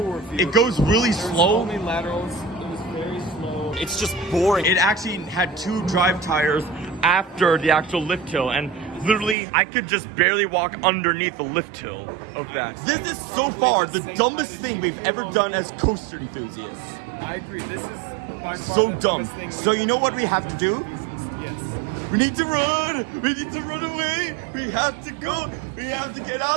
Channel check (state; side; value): drops out; left; at 9.3 s